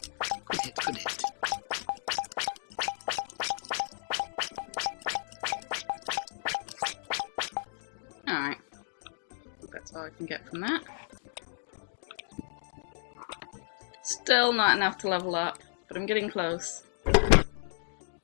Alright. That's all I can get from that. Still not enough to level up, but I'm getting close.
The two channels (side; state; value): right; silent; digital silence